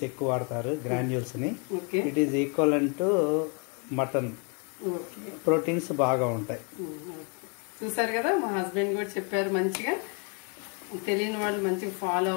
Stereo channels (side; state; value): right; quieter; 36.3 dB